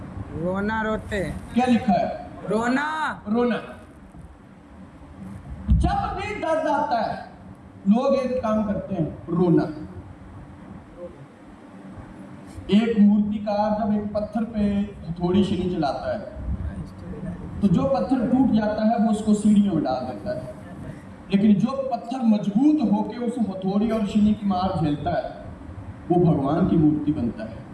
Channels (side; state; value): both; identical; correlation 1.00